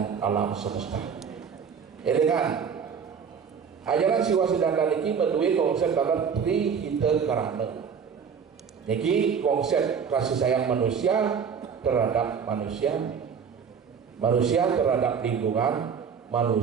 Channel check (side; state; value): left; quieter; 6.7 dB